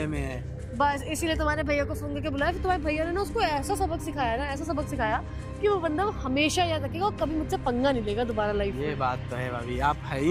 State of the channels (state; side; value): identical; both; correlation 1.00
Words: में है। बस इसीलिए तुम्हारे भैया को फोन करके बुलाया, फिर तुम्हारे भैया ने ना उसको ऐसा सबक सिखाया ना, ऐसा सबक सिखाया कि वो बंदा हमेशा याद रखेगा और कभी मुझसे पंगा नहीं लेगा दोबारा लाइफ ये में। बात तो है भाभी, आप है ही